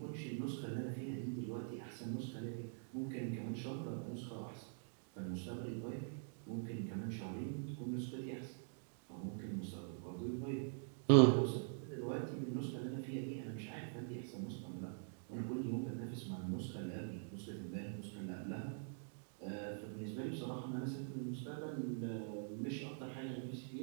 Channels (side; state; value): left; silent; digital silence